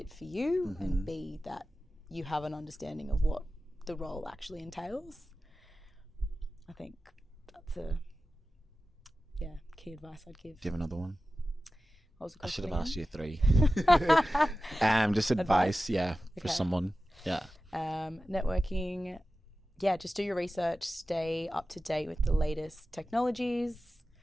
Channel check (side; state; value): both; normal; correlation 0.94